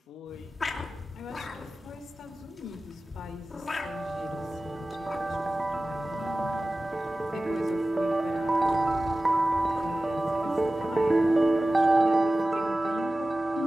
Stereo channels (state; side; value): normal; both; correlation 0.96